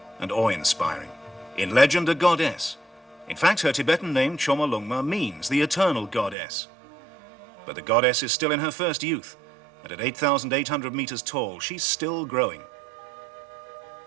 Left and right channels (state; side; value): drops out; left; at 6.4 s